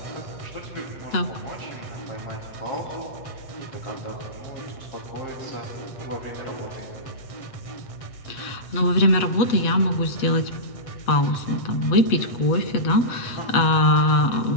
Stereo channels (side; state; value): right; late; 8.2 ms